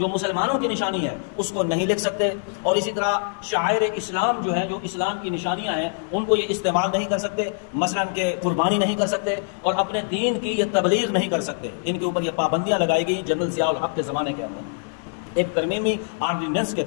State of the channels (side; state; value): right; silent; digital silence